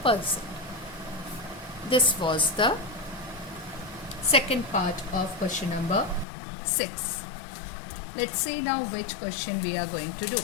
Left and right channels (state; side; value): drops out; right; at 6.2 s